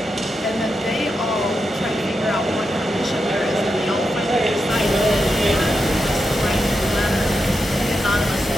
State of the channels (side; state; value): both; normal; correlation 0.87